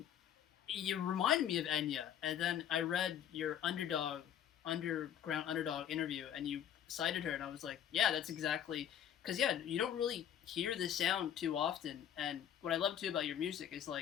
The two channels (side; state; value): right; quieter; 9.7 dB